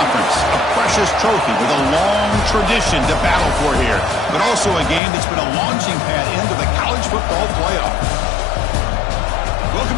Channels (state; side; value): drops out; right; at 5.0 s